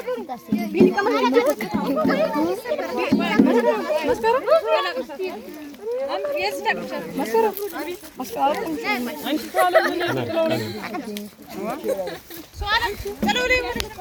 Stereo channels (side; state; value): both; identical; correlation 1.00